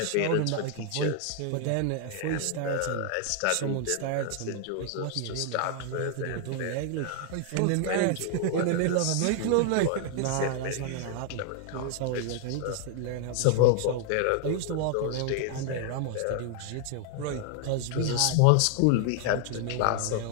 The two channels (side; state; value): both; different; correlation 0.00